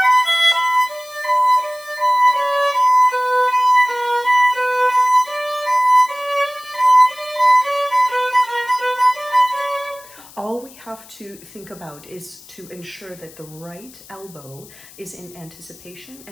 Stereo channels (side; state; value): left; noise; hiss, 21 dB below the sound